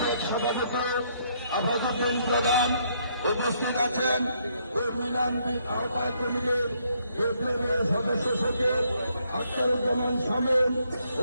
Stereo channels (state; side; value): inverted; both; correlation -0.71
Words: সভাপতি আফাজউদ্দিন প্রধান, উপস্থিত আছেন কর্মী ইউনিয়ন আহ্বায়ক কমিটির বিপ্লবী সদস্য সচিব আখতারুজ্জামান শামীম,